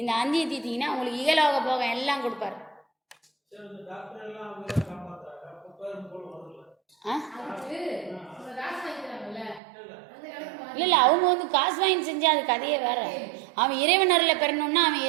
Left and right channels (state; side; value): drops out; left; at 9.6 s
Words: 5 தீத்தீங்கன்னா உங்களுக்கு இகலோக போகம் எல்லாம் கொடுப்பாரு. இல்லை அவங்க வந்து காசு வாங்கி செஞ்சா அது கதையே வேற. அவன் இறைவன் அருளை பெறணும்னா அவன்